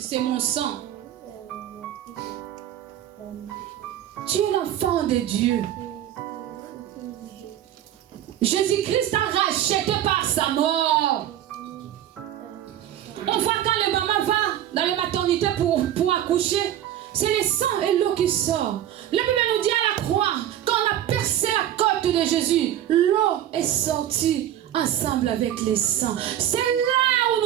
c'est mon sang. Tu es l'enfant de Dieu. Jésus-Christ t'a racheté par sa mort. On voit quand le maman va dans la maternité pour accoucher, c'est le sang et l'eau qui sort. La Bible nous dit à la croix, quand on a percé la côte de Jésus, l'eau est sortie ensemble avec le sang. C'est là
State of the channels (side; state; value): left; quieter; 11.5 dB